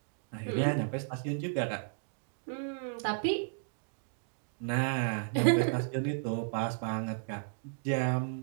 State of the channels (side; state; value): left; silent; digital silence